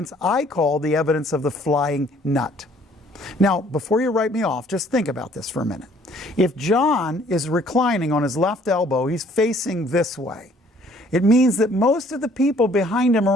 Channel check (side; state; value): both; normal; correlation 0.60